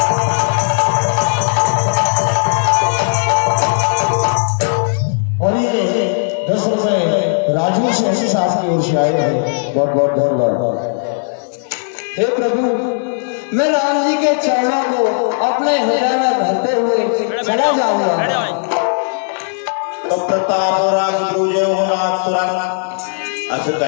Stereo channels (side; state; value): right; silent; digital silence